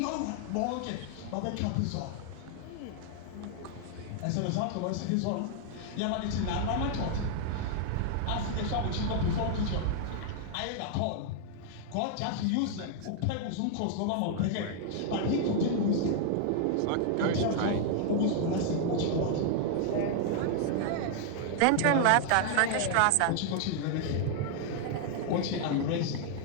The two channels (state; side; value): different; both; correlation 0.00